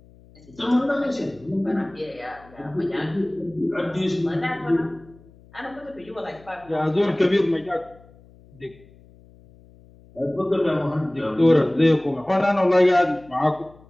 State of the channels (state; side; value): noise; left; hum, 25 dB below the sound